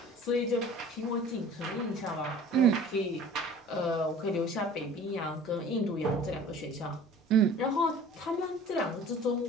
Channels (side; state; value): both; normal; correlation 0.45